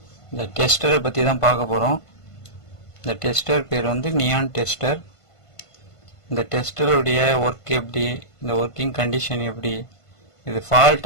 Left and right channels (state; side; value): late; right; 1.5 ms